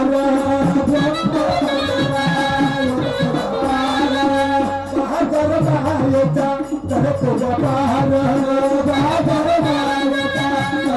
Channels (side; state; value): both; identical; correlation 1.00